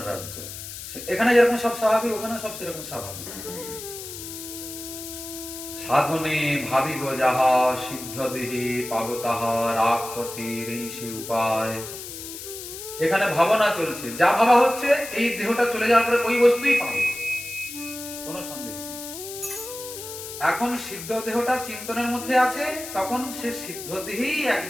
রাজ্য। এখানে যেরকম সব স্বাভাবিক, ওখানে সব সেরকম স্বাভাবিক। সাধনে ভাবিব যাহা, সিদ্ধ দেহে পাব তাহা, রাগ পথের এই সে উপায়। এখানে ভাবনা চলছে, যা ভাবা হচ্ছে এই দেহটা চলে যাওয়ার পরে ওই বস্তুই পাবে, কোনো সন্দেহ নেই। এখন সিদ্ধ দেহটা চিন্তনের মধ্যে আছে, তখন সে সিদ্ধ দেহেই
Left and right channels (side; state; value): left; noise; hiss, 10 dB below the sound